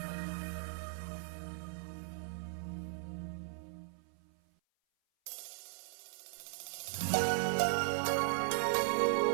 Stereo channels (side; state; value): left; silent; 53 dB below the other